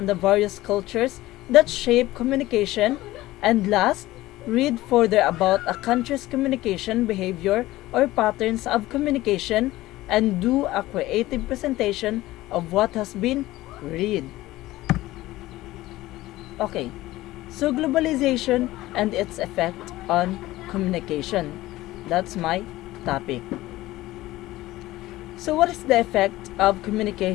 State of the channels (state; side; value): quieter; right; 17.1 dB